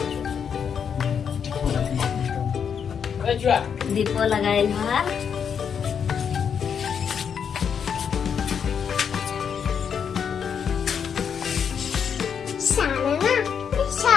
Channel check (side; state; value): right; quieter; 7.3 dB